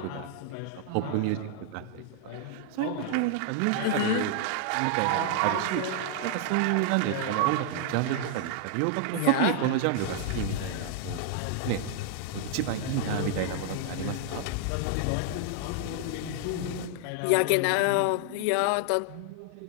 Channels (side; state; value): both; different; correlation 0.00